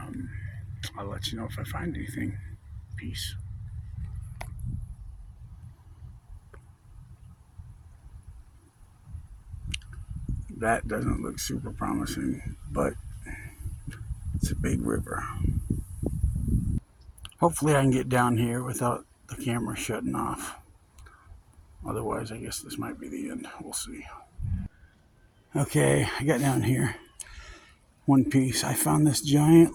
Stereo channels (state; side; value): identical; both; correlation 1.00